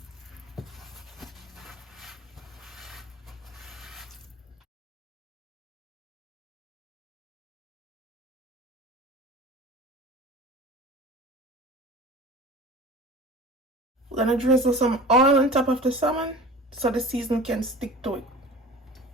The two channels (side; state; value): both; normal; correlation 0.38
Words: We're gonna drizzle some oil on top of the salmon so the seasoning can stick to